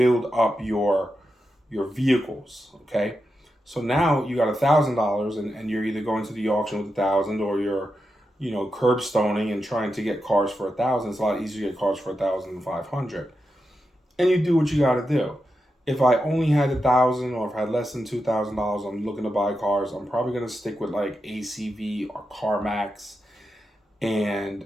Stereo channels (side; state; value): both; normal; correlation 0.88